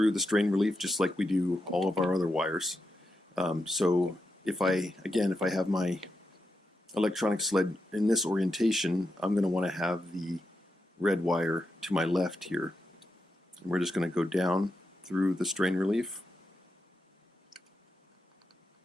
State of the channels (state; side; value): normal; both; correlation 0.86